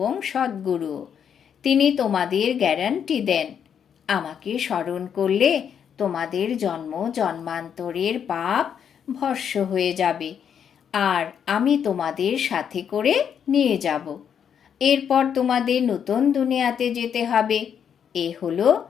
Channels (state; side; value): quieter; right; 8.1 dB